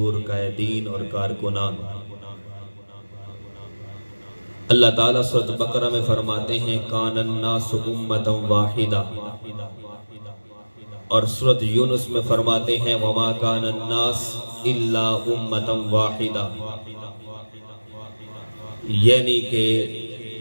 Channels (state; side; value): inverted; both; correlation -1.00